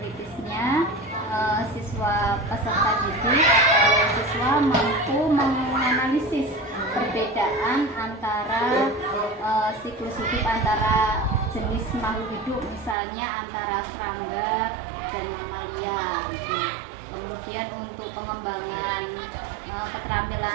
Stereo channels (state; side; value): drops out; left; at 13.0 s